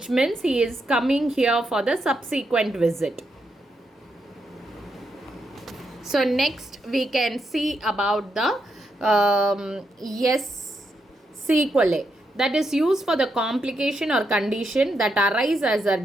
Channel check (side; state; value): both; normal; correlation 0.81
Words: means he is coming here for the subsequent visit. So next we can see about the sequelae, that is used for the complication or condition that arise as a